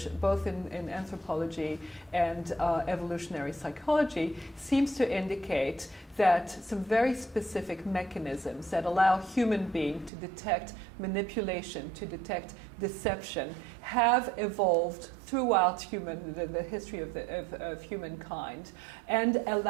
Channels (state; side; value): drops out; left; at 10.1 s